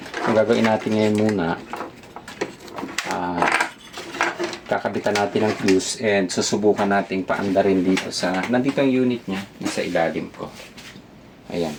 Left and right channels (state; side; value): identical; both; correlation 1.00